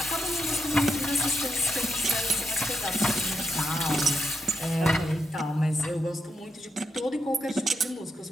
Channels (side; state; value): both; normal; correlation 0.82